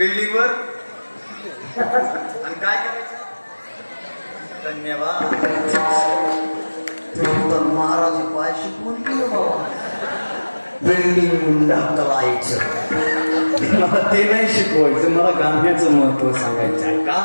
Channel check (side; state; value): both; inverted; correlation -1.00